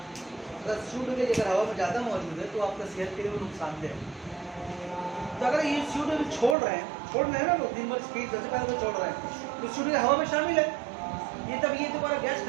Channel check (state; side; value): drops out; left; at 6.6 s